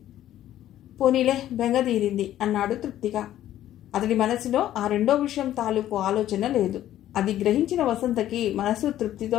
పోనీలే, బెంగదీరింది అన్నాడు తృప్తిగా. అతడి మనసులో ఆ రెండో విషయం తాలూకు ఆలోచన లేదు. అది గ్రహించిన వసంతకి మనసు తృప్తితో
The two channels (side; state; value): right; quieter; 12.6 dB